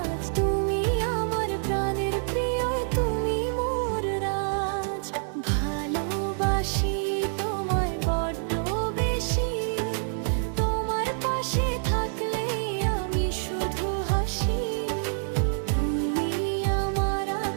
তুমি আমার প্রাণের প্রিয়, তুমি মোর রাজ। ভালোবাসি তোমায় বড্ড বেশি, তোমার পাশে থাকলেই আমি শুধু হাসি। তুমি আমার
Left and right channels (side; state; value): left; silent; digital silence